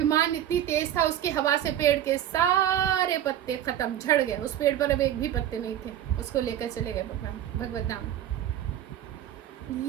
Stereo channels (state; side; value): quieter; left; 11.2 dB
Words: इतनी तेज था उसकी हवा से पेड़ के सारे पत्ते खत्म, झड़ गए। उस पेड़ पर अब एक भी पत्ते नहीं थे, उसको लेकर चले गए भगवान भगवत धाम।